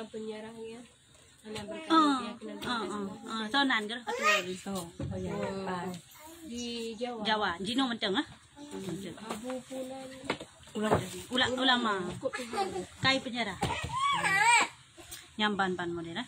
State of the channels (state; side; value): identical; both; correlation 1.00